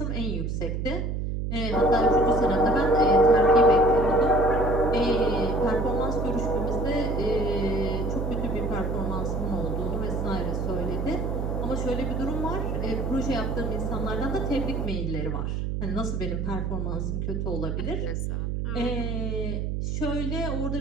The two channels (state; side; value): noise; right; hum, 1 dB below the sound